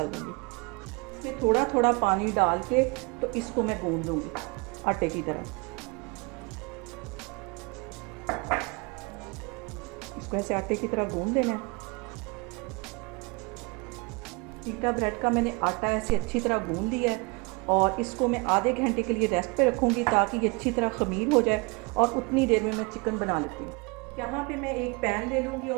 दूँगी। ये थोड़ा थोड़ा पानी डाल के तो इसको मैं गूंद लूँगी आटे की तरह। इसको ऐसे आटे की तरह गूंद देना है। पीटा ब्रेड का मैंने आटा ऐसे अच्छी तरह गूंद लिया है और इसको मैं आधे घंटे के लिए रेस्ट पे रखूँगी ताकि ये अच्छी तरह ख़मीर हो जाए और उतनी देर में मैं चिकन बना लेती हूँ। यहाँ पे मैं एक पैन ले लूँगी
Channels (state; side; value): quieter; left; 28.6 dB